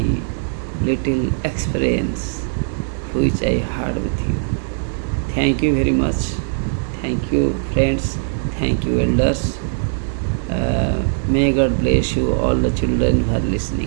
little experience which I had with you. Thank you very much. Thank you, friends. Thank you, elders. May God bless you, all the children who are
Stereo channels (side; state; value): left; silent; digital silence